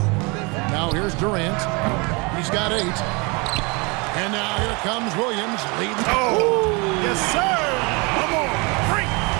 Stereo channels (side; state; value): left; quieter; 28.6 dB